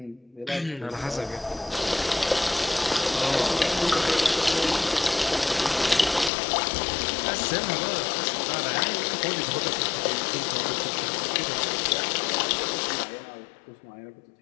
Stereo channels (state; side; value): drops out; right; at 6.3 s